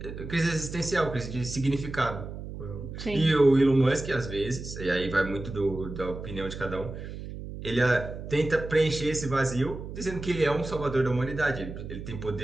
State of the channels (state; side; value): noise; right; hum, 9 dB below the sound